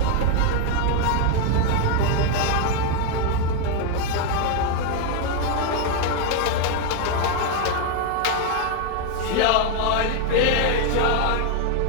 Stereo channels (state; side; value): different; both; correlation 0.01